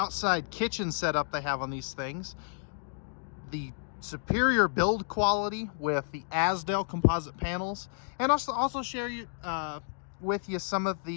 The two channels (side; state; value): right; silent; 57 dB below the other